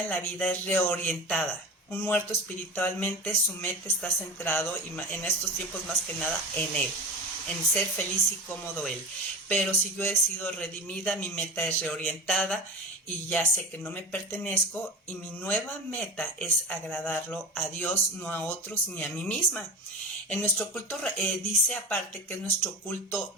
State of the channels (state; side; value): normal; both; correlation 0.29